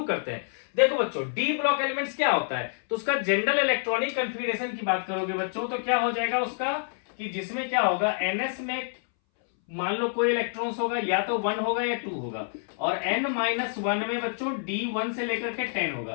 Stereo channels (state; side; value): silent; right; 60 dB below the other